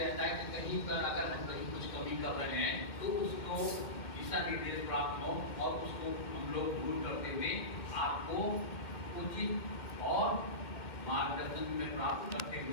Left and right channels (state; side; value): late; right; 2.2 ms